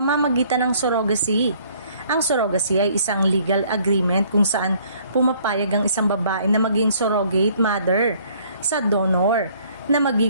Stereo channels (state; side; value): inverted; both; correlation -0.60